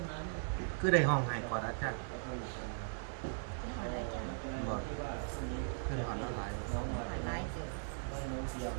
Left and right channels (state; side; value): silent; left; digital silence